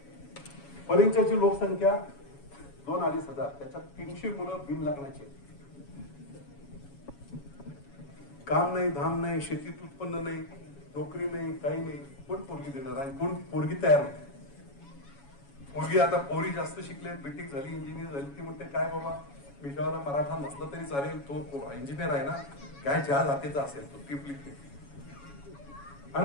परिंच्याची लोकसंख्या 2-2.5 हजार, त्याच्यात 300 मुलं बिन लग्नाचे. काम नाही, धाम नाही, शेतीत उत्पन्न नाही, नोकरी नाही, काही नाही. कोण पोरगी देणार आणि कोण पोरगी तयार होते? पोरगी आता पोरी जास्त शिकले, बीटेक झाली, इंजिनियर झाली. ती म्हणते काय बाबा विषयाला मराठा नसला तरी चालेल, तो इंजिनियर आहे ना, काय ज्या जातीचा असेल तो टिपलिक.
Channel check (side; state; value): right; late; 7.2 ms